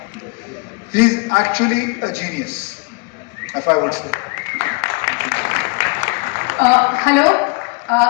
He is actually a genius, if I would say. Hello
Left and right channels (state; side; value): quieter; right; 30.8 dB